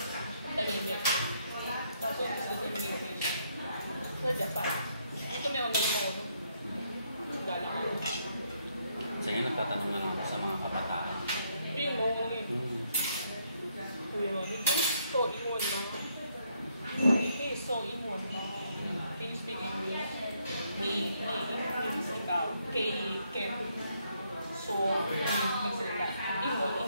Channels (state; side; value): inverted; both; correlation -0.73